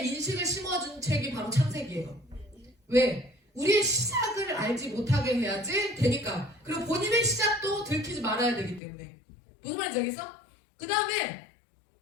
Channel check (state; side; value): drops out; right; at 8.8 s